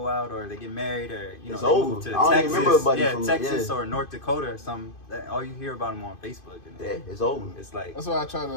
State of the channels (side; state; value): right; late; 2.5 ms